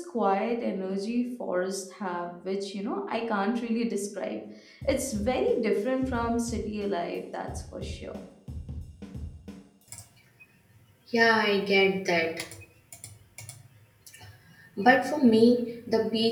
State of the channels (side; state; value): both; identical; correlation 1.00